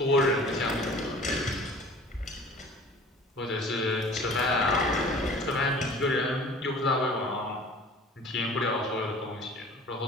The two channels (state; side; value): normal; both; correlation 0.46